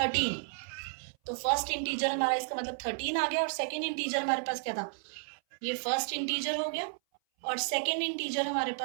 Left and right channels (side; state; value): left; silent; 56 dB below the other